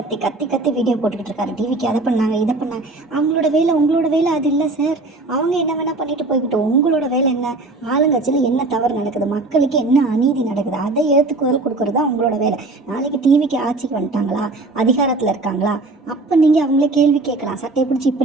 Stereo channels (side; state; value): left; quieter; 3.2 dB